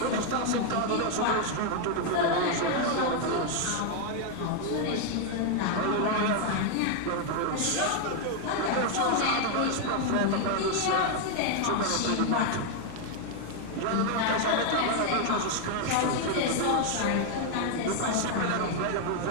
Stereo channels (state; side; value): different; both; correlation 0.00